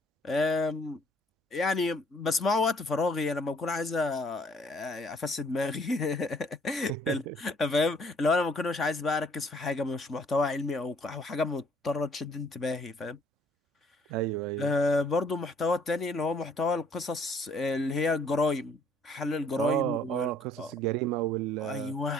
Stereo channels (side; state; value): both; normal; correlation 0.61